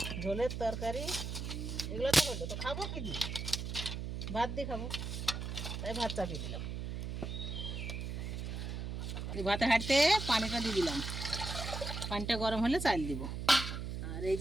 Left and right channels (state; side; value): noise; right; hum, 4 dB below the sound